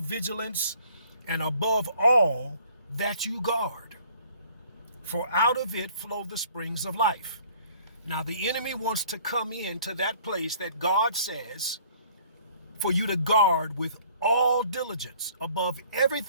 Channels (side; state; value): both; inverted; correlation -0.56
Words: and above all that you guard, for out of it flow the springs of life. Now the enemy wants to come into that place that God says for you to guard with all diligence. Above